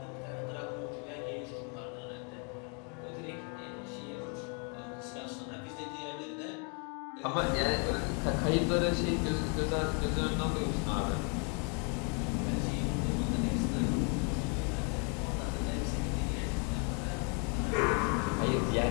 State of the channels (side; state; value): right; quieter; 34.9 dB